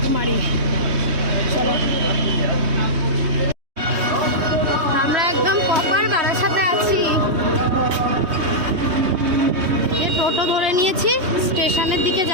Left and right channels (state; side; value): late; left; 3.2 ms